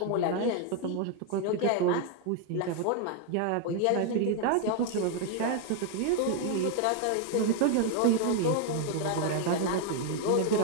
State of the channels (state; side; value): different; both; correlation 0.00